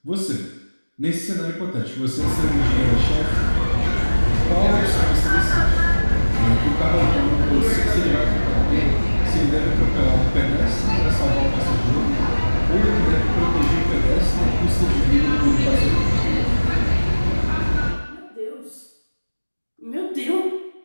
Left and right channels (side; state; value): both; inverted; correlation -1.00